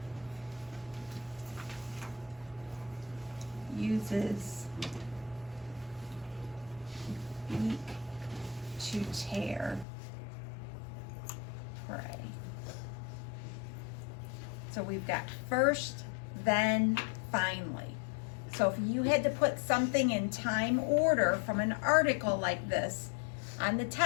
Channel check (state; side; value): drops out; right; at 9.9 s